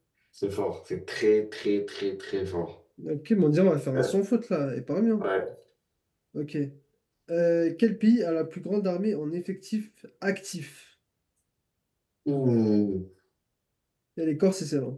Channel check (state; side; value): identical; both; correlation 1.00